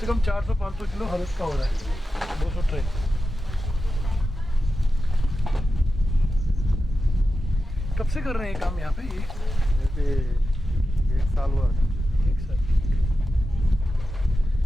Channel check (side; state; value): both; normal; correlation 0.91